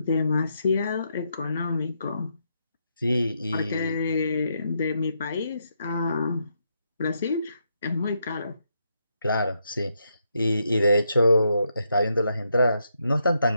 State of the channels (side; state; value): both; inverted; correlation -0.79